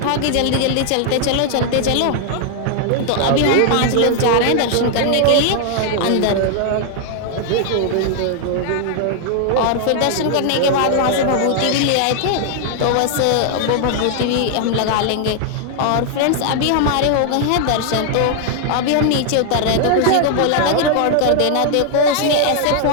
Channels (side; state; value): both; different; correlation 0.00